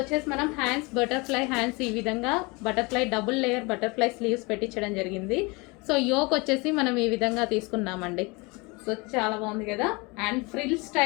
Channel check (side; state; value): right; quieter; 26.9 dB